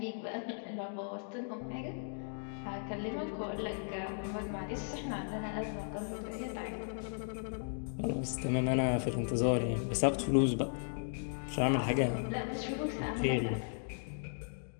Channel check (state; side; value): silent; right; digital silence